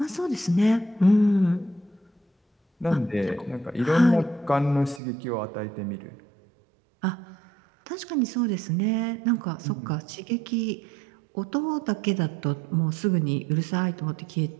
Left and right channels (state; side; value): drops out; left; at 5.0 s